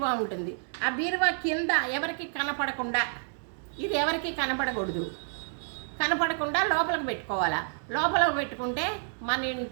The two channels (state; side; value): silent; left; 58 dB below the other